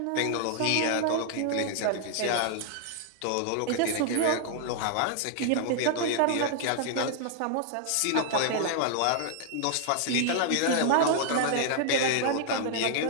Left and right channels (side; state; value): both; different; correlation -0.01